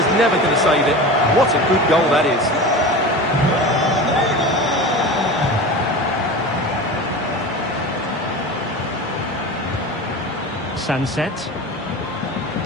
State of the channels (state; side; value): normal; both; correlation 0.31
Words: never going to save it. What a good goal that is. Sunset.